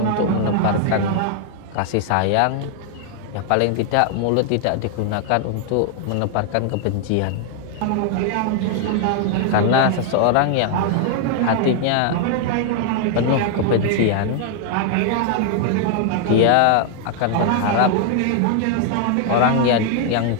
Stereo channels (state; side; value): different; both; correlation 0.00